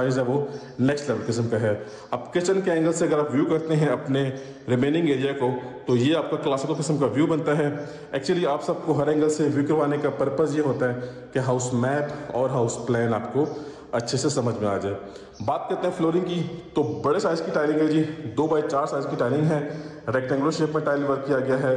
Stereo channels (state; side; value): identical; both; correlation 1.00